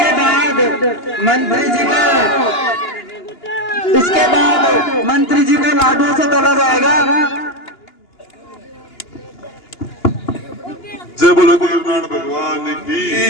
इसके बाद मंत्री जी को लाडू से तोला जाएगा। जय बोलो गुरुनान भगवान की जय,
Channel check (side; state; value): right; late; 2.9 ms